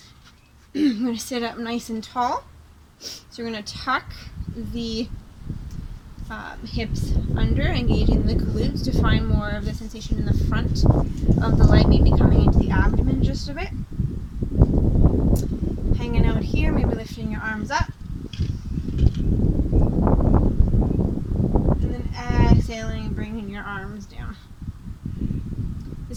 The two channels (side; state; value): both; identical; correlation 1.00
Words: I'm going to sit up nice and tall. So we're going to tuck the hips under, engaging the glutes to find more of the sensation in the front of the leg, maybe coming into the abdomen just a bit. Hanging out here, maybe lifting your arms up. And then exhaling, bringing your arms down.